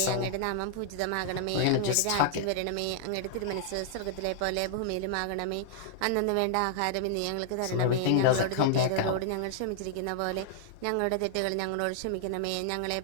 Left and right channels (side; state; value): both; different; correlation -0.01